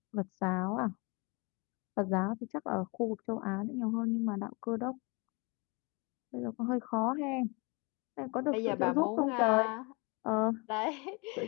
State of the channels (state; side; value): quieter; right; 29.2 dB